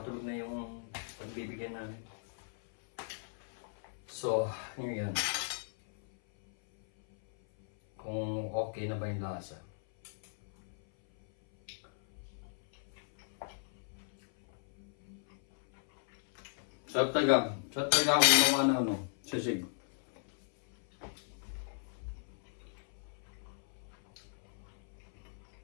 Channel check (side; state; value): right; silent; 54 dB below the other